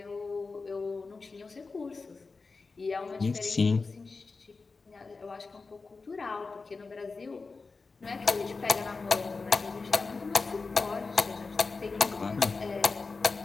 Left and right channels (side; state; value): right; quieter; 4.2 dB